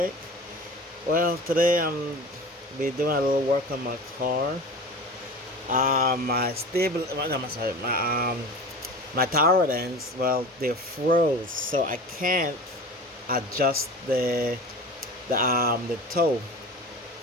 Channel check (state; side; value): normal; both; correlation 0.35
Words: Well, today I'm be doing a little work on my car. My tower ends. Well, they froze, so I can't adjust the toe